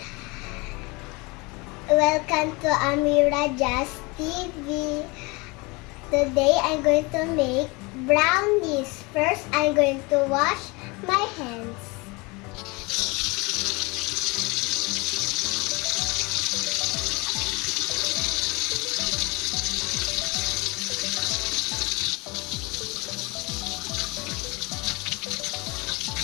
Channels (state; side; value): quieter; right; 26.2 dB